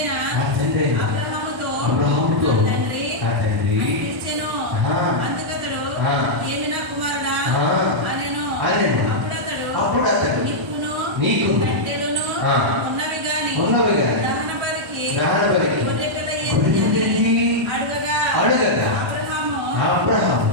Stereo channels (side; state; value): both; normal; correlation -0.06